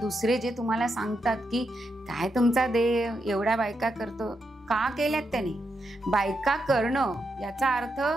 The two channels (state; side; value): normal; both; correlation 0.83